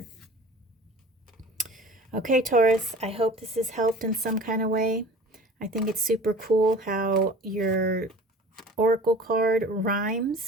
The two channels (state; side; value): normal; both; correlation 0.43